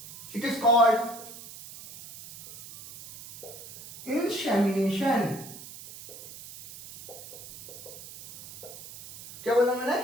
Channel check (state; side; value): noise; right; hiss, 15 dB below the sound